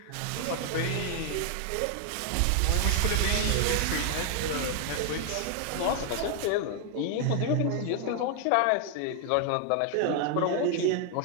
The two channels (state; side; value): different; both; correlation 0.00